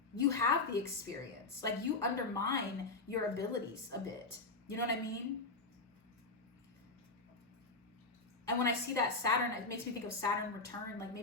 You have the experience. Like you undermine your abilities a bit. You know what I mean? And when I see that Saturn, it makes me think of Saturn return. Like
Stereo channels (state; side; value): quieter; right; 3.6 dB